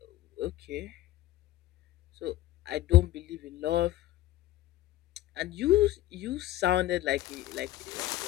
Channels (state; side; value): quieter; right; 15.0 dB